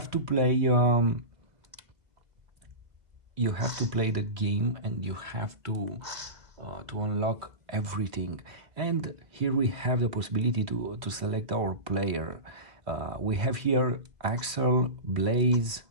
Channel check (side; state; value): left; late; 2.0 ms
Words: to play the game, and you have to unlock everything. And here we have the possibility to select our player. We have here Axel, Blaze,